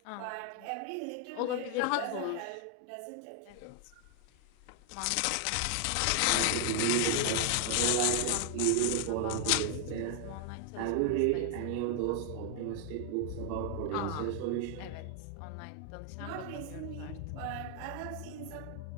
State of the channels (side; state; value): both; different; correlation 0.00